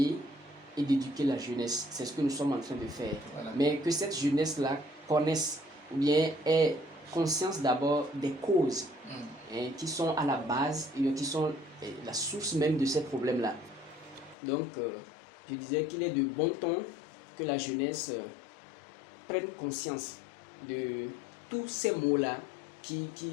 et d'éduquer la jeunesse. C'est ce que nous sommes en train de faire. Voilà. Mais que cette jeunesse-là connaisse ou bien ait conscience d'abord des causes qui sont à la base et qui sont la source même de ces problèmes-là. Donc, je disais qu'il est de bon ton que la jeunesse prenne conscience de tous ces mots-là qui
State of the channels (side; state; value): right; drops out; at 14.4 s